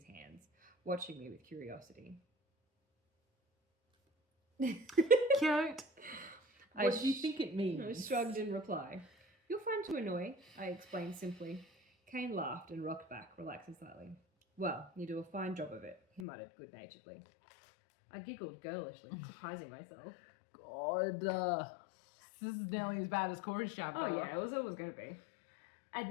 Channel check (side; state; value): right; drops out; at 16.2 s